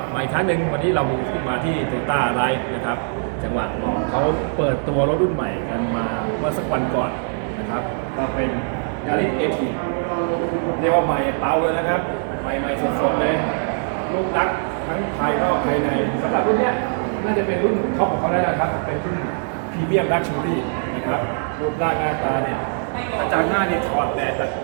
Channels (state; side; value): silent; left; digital silence